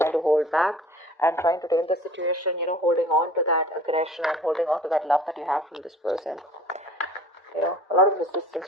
to hold back and trying to tame the situation, holding on to that aggression and holding on to that love that you have from this person. A lot of resistance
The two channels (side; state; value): both; normal; correlation 0.47